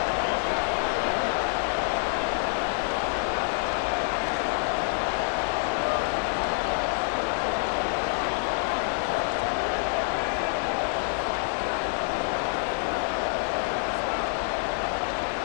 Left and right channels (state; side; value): silent; right; 58 dB below the other